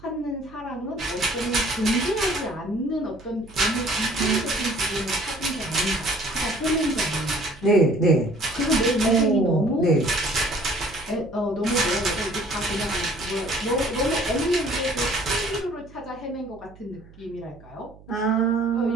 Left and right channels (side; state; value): right; noise; hum, 23 dB below the sound